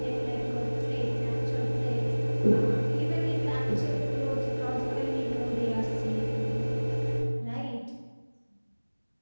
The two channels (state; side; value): inverted; both; correlation -1.00